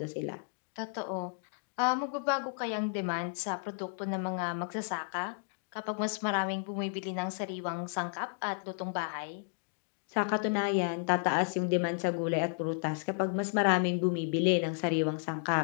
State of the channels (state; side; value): silent; right; digital silence